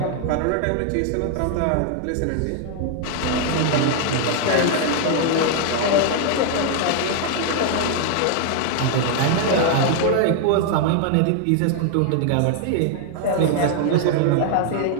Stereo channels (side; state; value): both; different; correlation 0.00